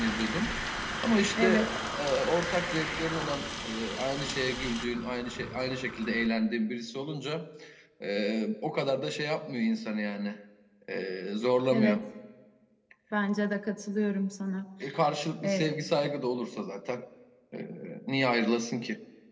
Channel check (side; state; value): both; identical; correlation 1.00